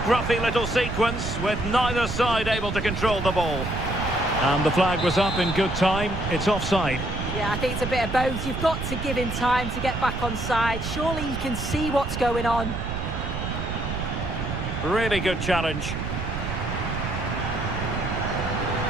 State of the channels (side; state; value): right; noise; rumble, 5 dB below the sound